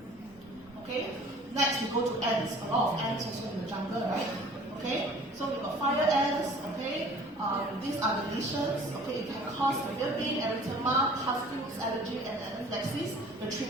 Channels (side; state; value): both; normal; correlation 0.49